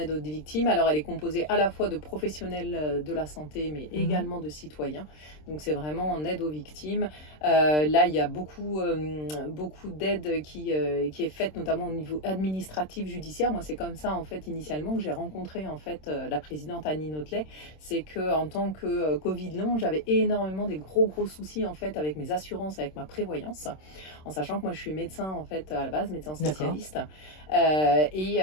aux victimes. Alors, elle est composée à la fois de professionnels de la santé, mais également de citoyens. Donc, c'est vraiment en aide aux victimes. Là, il y a beaucoup d'aide qui est faite, notamment au niveau administratif, judiciaire. Moi, c'est comme ça, en fait, initialement, que j'ai rencontré, en fait, la présidente Annie Notelet. C'est qu'en tant que Covid long, j'avais énormément des gros soucis, en fait, avec mes assurances, avec ma prévoyance. En sachant que moi je suis médecin en fait à la base, médecin spécialiste,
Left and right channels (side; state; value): right; late; 26 ms